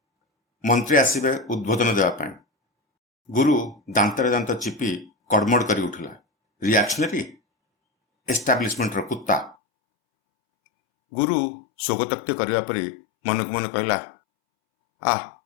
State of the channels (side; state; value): right; drops out; at 9.6 s